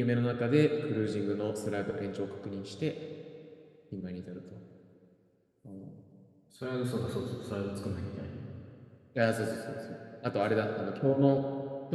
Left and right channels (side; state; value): both; identical; correlation 1.00